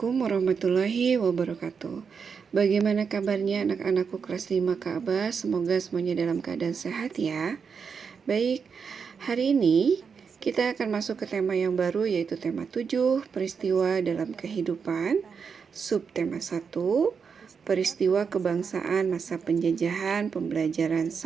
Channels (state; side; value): quieter; left; 6.1 dB